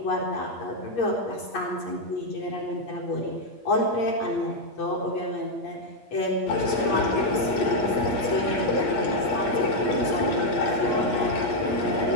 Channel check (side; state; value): right; late; 8.5 ms